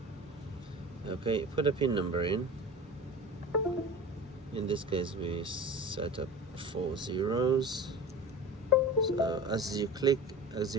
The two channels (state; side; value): normal; both; correlation 0.34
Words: Okay, put a pin number in. In this case we set up 4 zeros. So as you